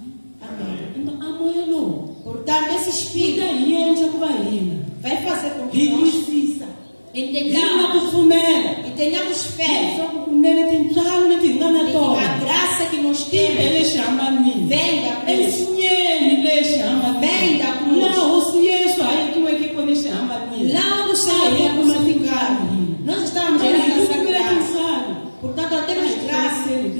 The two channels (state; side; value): inverted; both; correlation -1.00